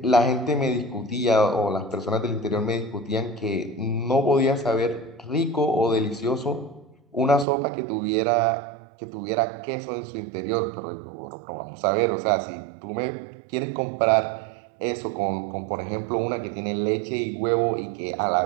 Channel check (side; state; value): left; drops out; at 7.5 s